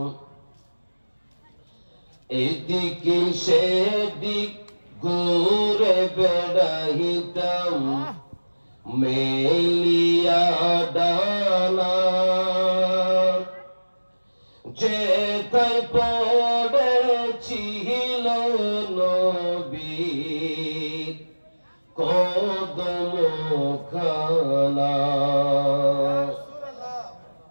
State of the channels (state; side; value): inverted; both; correlation -1.00